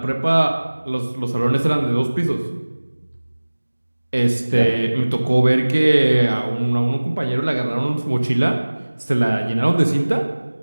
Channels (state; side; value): inverted; both; correlation -1.00